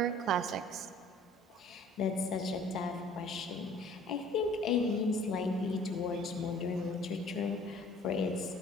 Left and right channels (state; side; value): normal; both; correlation 0.52